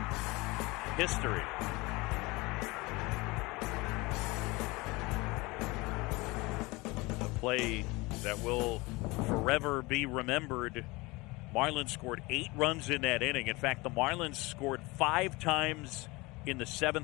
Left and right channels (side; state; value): right; quieter; 23.6 dB